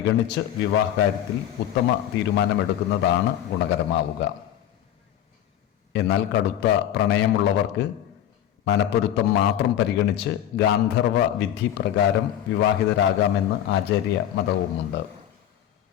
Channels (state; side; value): quieter; right; 11.0 dB